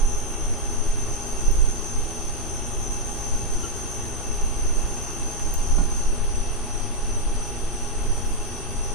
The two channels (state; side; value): normal; both; correlation 0.00